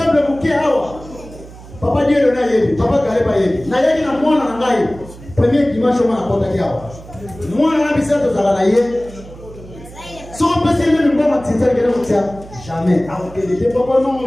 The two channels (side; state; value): right; noise; hum, 18 dB below the sound